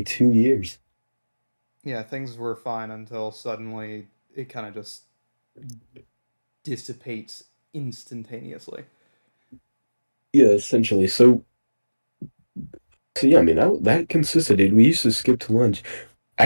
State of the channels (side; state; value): both; inverted; correlation -1.00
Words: 2 years. Yeah, things were fine until suddenly it kind of just dissipates instantaneously. Yeah, essentially. So yeah, I mean that consisted, dude. We used to skip to lunch.